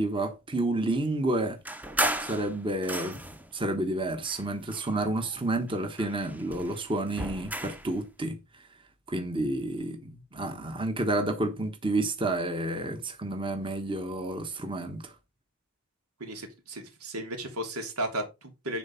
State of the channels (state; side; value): normal; both; correlation 0.50